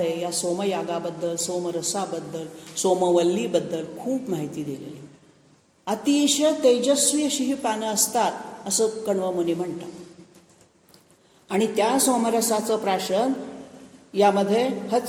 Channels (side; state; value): both; identical; correlation 1.00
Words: या सोमयागाबद्दल, सोमरसाबद्दल, सोमवल्लीबद्दल खूप माहिती दिलेली. अतिशय तेजस्वी अशी ही पानं असतात असं कण्व मुनी म्हणतात. आणि त्या सोमरसाचं प्राशन यामध्ये